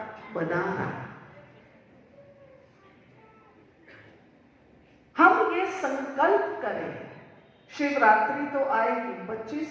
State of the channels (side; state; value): both; identical; correlation 1.00